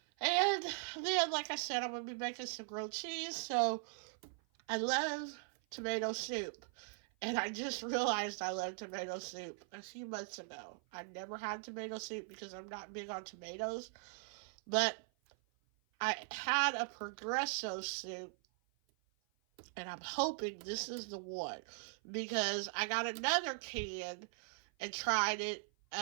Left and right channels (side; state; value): left; silent; 51 dB below the other